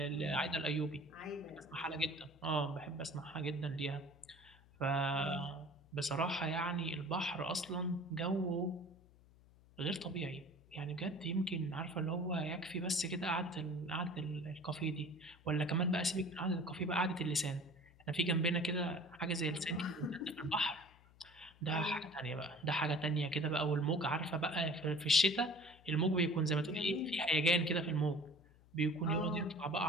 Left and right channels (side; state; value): left; noise; hum, 26 dB below the sound